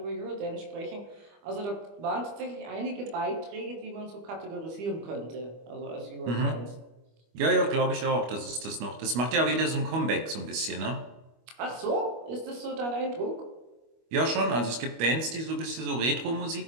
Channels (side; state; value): left; late; 25 ms